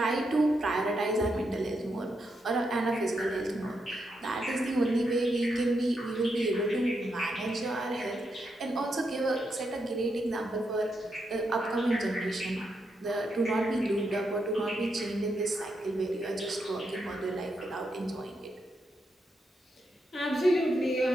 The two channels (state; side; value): normal; both; correlation 0.82